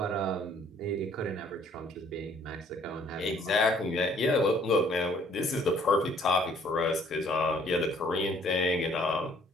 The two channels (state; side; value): normal; both; correlation 0.60